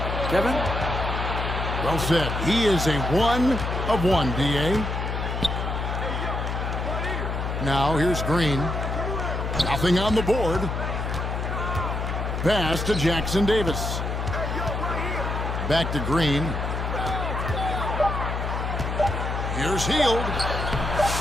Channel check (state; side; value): noise; left; hum, 2 dB below the sound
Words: Kevin? Well said. He is a 1 of 1, D.A. Now, here's Green. Nothing on the board. Pass to Jackson Davis. Back to Green. Here's Hield.